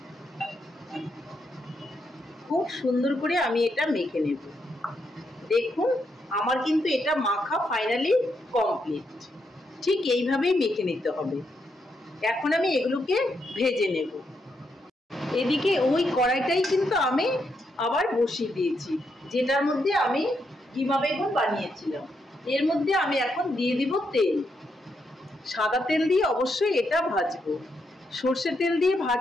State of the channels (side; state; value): both; normal; correlation 0.80